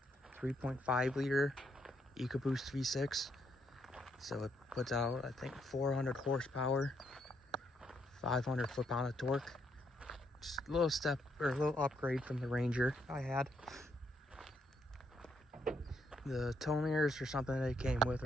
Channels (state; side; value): normal; both; correlation 0.75